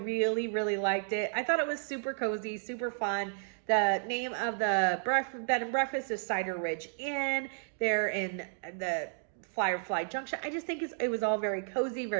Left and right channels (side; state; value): left; silent; digital silence